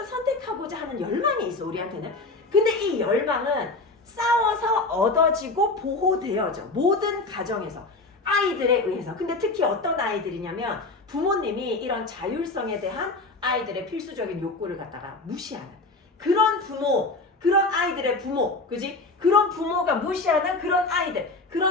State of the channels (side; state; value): right; quieter; 3.3 dB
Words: 선택하고자 하는 열망이 있어 우리한테는. 근데 이 열망은 싸워서 얻어지고 보호되어져. 모든 가정에서 아이들에 의해서. 근데 특히 어떤 아이들이냐면 부모님이 이런 자율성에 대한 아이들의 필수적인 욕구를 갖다가 무시하는 그런 부모, 그런 아이들의 부모, 그지? 그런 부모가 무시하는